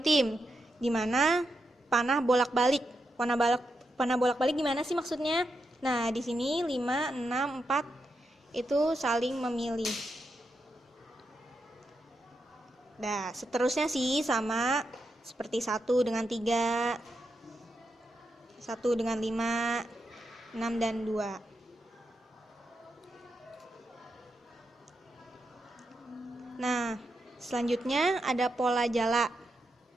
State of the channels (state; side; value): normal; both; correlation 0.85